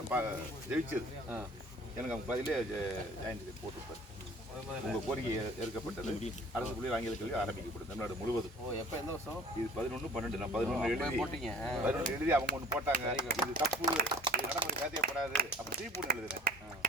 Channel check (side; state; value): both; normal; correlation 0.49